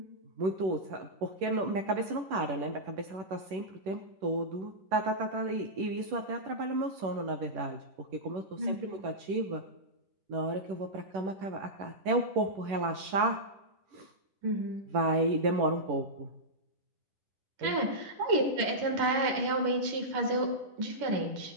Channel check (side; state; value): left; late; 10 ms